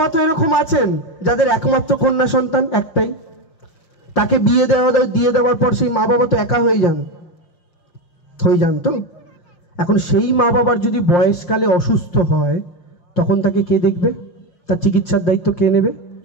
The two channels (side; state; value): right; late; 5.7 ms